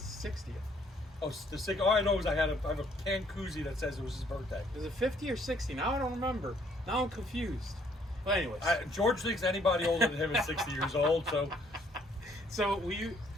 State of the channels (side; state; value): both; normal; correlation 0.65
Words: Oh, the sick. All I know is I have a can koozie that says it was his birthday. Is it 50 or 60? Now I don't remember. Now I'm confused. But anyways, George thinks anybody older than him is 60 years old. So we